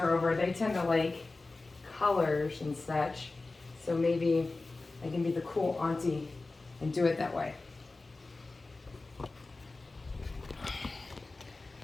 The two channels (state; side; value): quieter; right; 3.4 dB